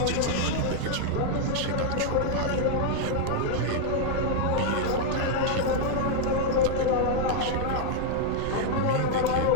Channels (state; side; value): different; both; correlation 0.00